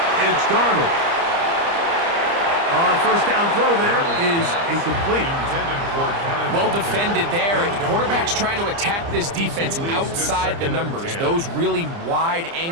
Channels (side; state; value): left; late; 30 ms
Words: it's Darnold. First down throw there is incomplete. Well defended there. The quarterback's trying to attack this defense outside the numbers. Those really wide